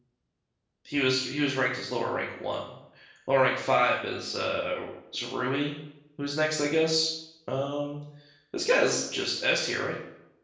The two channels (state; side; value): identical; both; correlation 1.00